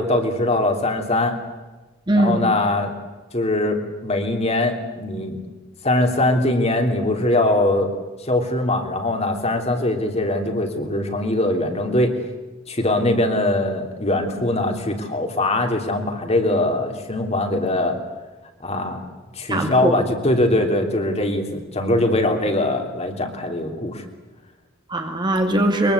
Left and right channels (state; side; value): normal; both; correlation 0.38